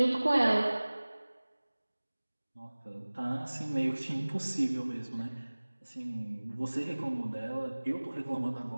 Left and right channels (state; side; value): inverted; both; correlation -1.00